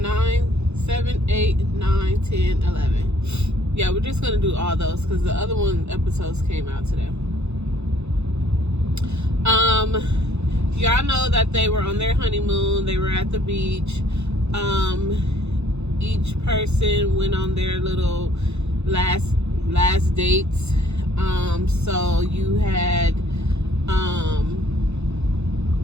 9, 7, 8, 9, 10, 11? Yeah, we're just gonna do all those because the other episodes came out today. Y'all know that they were on their honeymoon. They were at the beach. Each person went on their little last dates. So you had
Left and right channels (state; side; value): late; left; 0.81 ms